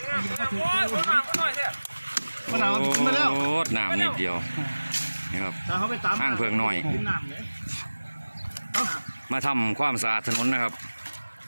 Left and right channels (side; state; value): both; inverted; correlation -1.00